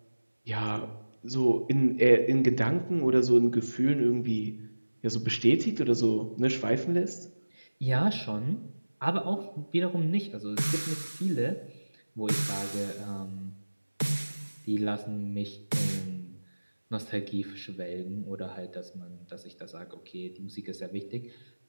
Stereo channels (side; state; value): both; inverted; correlation -1.00